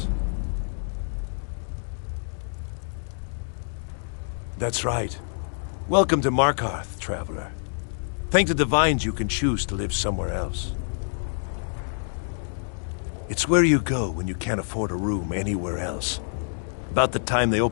That's right. Welcome to Markarth, traveler. Thank the Divines you can choose to live somewhere else. It's where you go when you can't afford a room anywhere else. About the time they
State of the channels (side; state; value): right; silent; digital silence